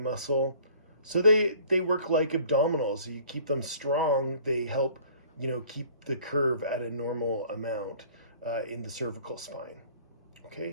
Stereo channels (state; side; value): inverted; both; correlation -0.52